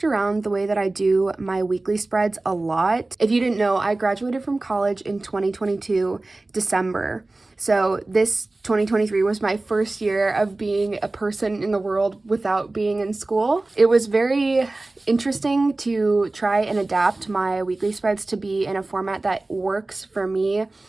around the way that I do my weekly spreads a lot. If you didn't know, I graduated from college in 2022 December. So this 2023 was my first year of being a person in the world without being in school. It was very interesting to try and adapt my weekly spreads to be in a format that works for me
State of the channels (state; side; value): quieter; left; 3.0 dB